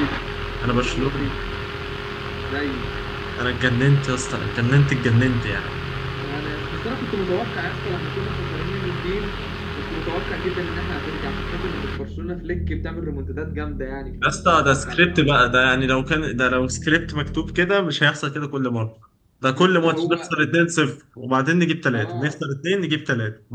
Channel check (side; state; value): both; identical; correlation 1.00